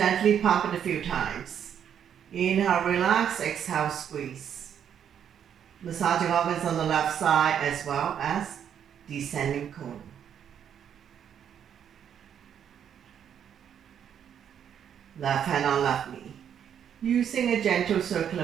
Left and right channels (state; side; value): quieter; left; 8.8 dB